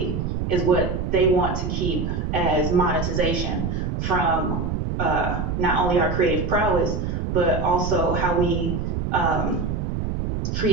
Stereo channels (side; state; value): right; noise; rumble, 2 dB below the sound